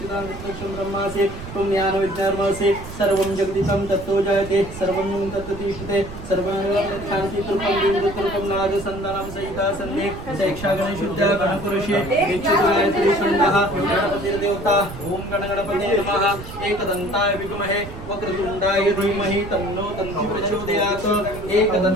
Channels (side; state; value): right; noise; rumble, 12 dB below the sound